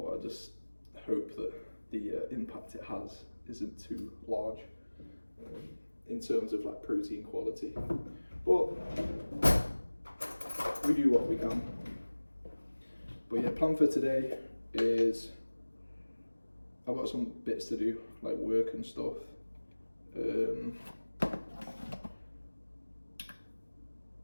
I just hope that the impact it has isn't too large in terms of like protein quality. But we do what we can. But yeah, plan for today is I've got some bits to do, like work and stuff.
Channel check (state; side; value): inverted; both; correlation -1.00